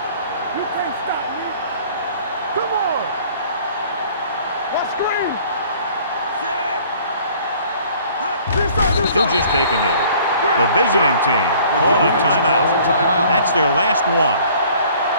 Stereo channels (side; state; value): both; inverted; correlation -0.54